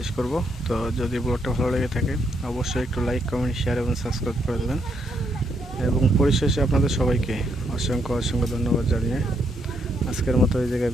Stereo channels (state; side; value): normal; both; correlation 0.76